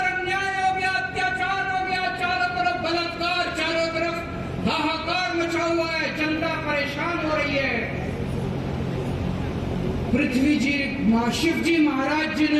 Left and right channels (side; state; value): both; identical; correlation 1.00